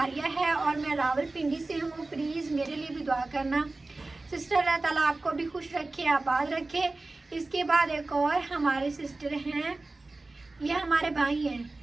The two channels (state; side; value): quieter; left; 3.2 dB